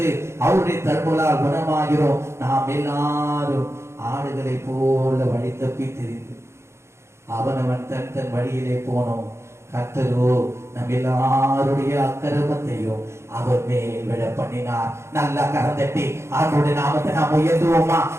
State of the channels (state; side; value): late; left; 0.13 ms